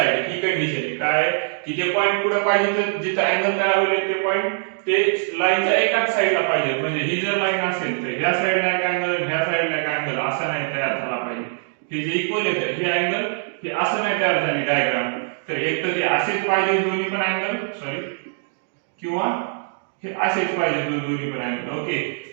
He condition आहे काय की जे पॉइंट पुढे पाहिजे तर जिथे अँगल तयार होईल ते पॉइंट ते लाईनच्या एकाच साइडला पाहिजे. म्हणजे ही जर लाईन असेल तर ह्या साइडला एक अँगल, ह्या साइडला एक अँगल असा नाही तयार झाला पाहिजे. हे जे इक्वल आहे हे अँगल हे असं नाही तयार झाली डायग्राम. तर एक तर ते असेच पाहिजे दोन्ही पण अँगल, सॉरी, किंवा हे असेच पाहिजे दोन्ही पण अँगल. ओके,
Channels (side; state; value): left; silent; 64 dB below the other